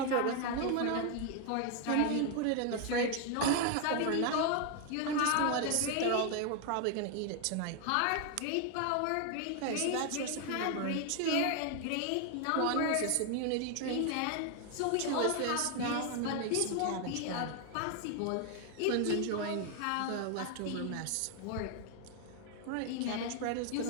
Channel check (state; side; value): different; both; correlation 0.01